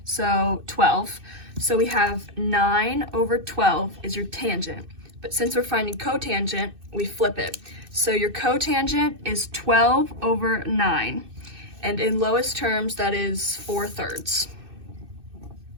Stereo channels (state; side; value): late; left; 2.6 ms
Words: so 12. So we have 9 over 12 is your tangent, but since we're finding cotangent, we flip it. So your cotangent is 12 over 9, and in lowest terms, that is 4/3.